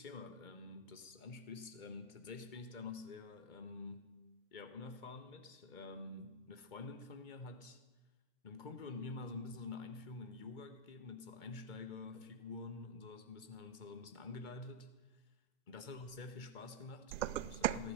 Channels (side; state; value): right; late; 2.2 ms